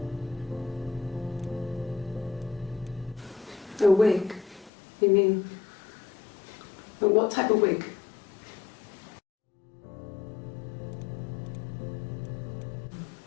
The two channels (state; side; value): drops out; right; at 4.7 s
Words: A wig? You mean, but what type of wig?